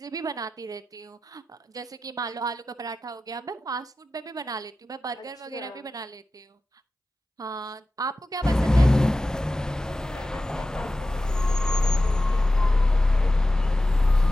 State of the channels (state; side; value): normal; both; correlation 0.94